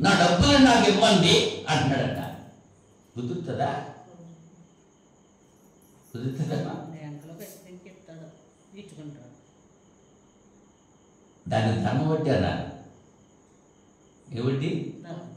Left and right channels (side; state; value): both; identical; correlation 1.00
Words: నా డబ్బులు నాకు ఇవ్వండి అంటున్నాడట. కుదురుతుందా? కుదురుతుందమ్మా? దాన్ని ధర్మ వడ్డీ అన్నారు. ఏ వడ్డీ?